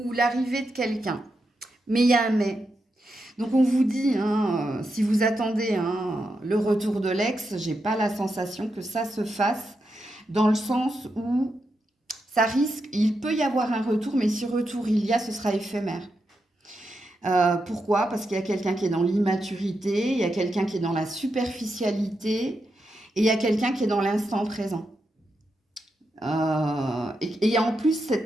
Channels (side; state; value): both; normal; correlation 0.85